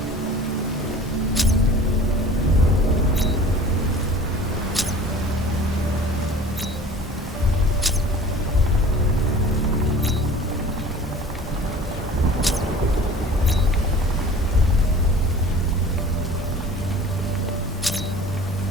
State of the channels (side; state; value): both; normal; correlation 0.43